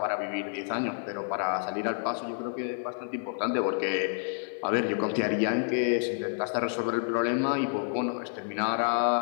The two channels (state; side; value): silent; right; 58 dB below the other